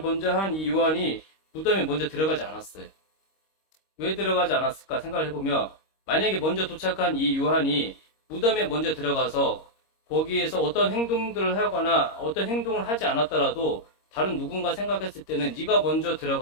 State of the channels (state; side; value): late; right; 26 ms